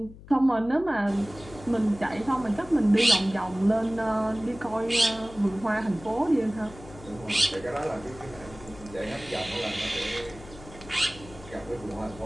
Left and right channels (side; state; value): left; noise; hum, 18 dB below the sound